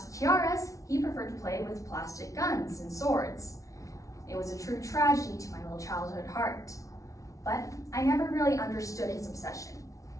tiaras, he preferred to play with plastic guns and swords. It was a true tragedy to my little childhood heart. But I never really understood his obsession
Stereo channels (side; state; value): right; late; 0.16 ms